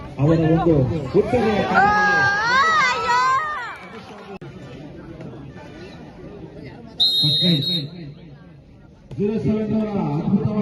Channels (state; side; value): identical; both; correlation 1.00